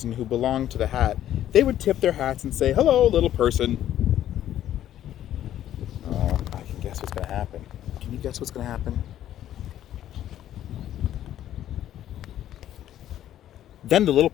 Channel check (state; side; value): quieter; right; 11.8 dB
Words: who belonged to the hat, they would tip their hats and say, "Hello, little person." Oh, I can guess what's going to happen. Can you guess what's going to happen? Then the little